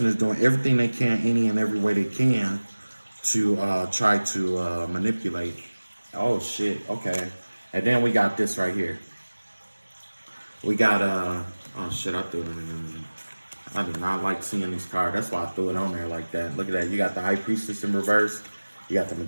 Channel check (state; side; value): inverted; both; correlation -1.00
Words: is doing everything they can, any and every way they can, to try to manipulate. Oh shit. Okay. And then we got this right here. We got oh shit, I threw it in. I do not like seeing these cards. That's why I threw it on there like that. Look at that. You got the High Priestess in reverse. You got the